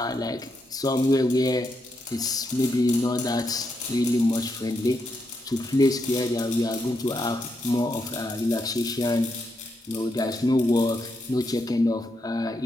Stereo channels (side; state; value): both; normal; correlation 0.81